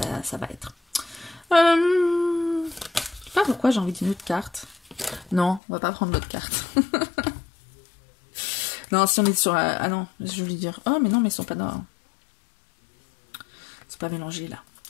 va être. Je sais pas pourquoi j'ai envie d'une autre carte. Non, on va pas prendre l'autre carte. Non, si on est sur... ah non, je voulais dire... Oh, mais non, mais ils sont pas dans... C'est pas mélangé, là.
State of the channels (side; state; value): right; drops out; at 5.6 s